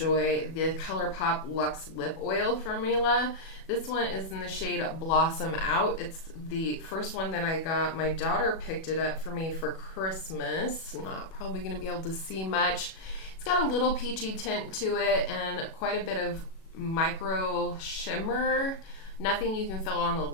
the ColourPop Luxe Lip Oil formula. This one is in the shade Blossom Out. It's the first one that I got. My daughter picked it up for me for Christmas. Not probably going to be able to see much. It's got a little peachy tint to it and quite a bit of micro shimmer. Nothing you can feel on the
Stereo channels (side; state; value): right; late; 37 ms